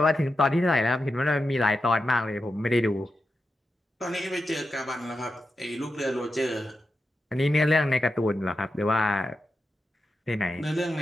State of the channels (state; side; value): normal; both; correlation 0.89